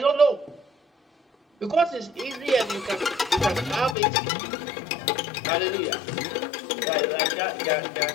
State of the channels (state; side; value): drops out; right; at 4.0 s